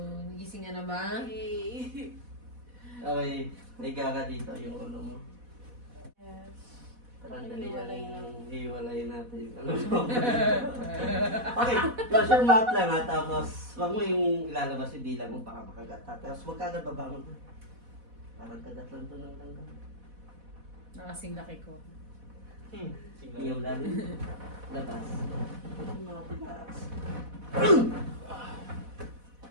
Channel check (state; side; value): late; left; 4.1 ms